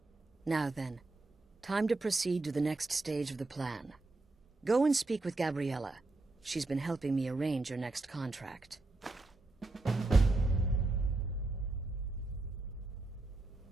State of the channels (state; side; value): quieter; left; 3.2 dB